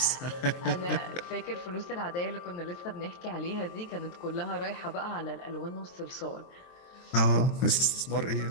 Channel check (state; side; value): late; right; 23 ms